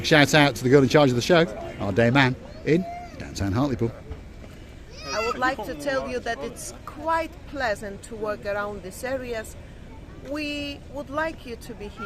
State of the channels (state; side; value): identical; both; correlation 1.00